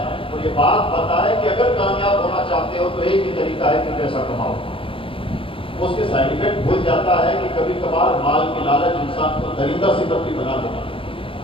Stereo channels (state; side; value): late; right; 0.26 ms